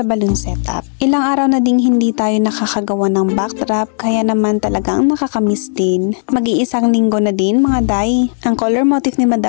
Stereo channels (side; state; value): right; silent; digital silence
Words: balloon setup. Ilang araw na ding hindi tayo nakakagawa ng backdrop kaya naman talagang nakakamiss din. Mag-iisang linggo na din mga day. Ang color motif ni